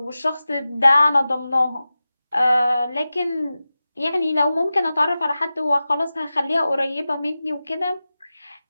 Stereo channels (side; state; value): both; inverted; correlation -0.95